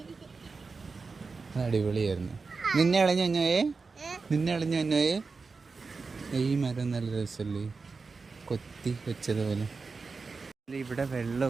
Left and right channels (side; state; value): left; quieter; 4.4 dB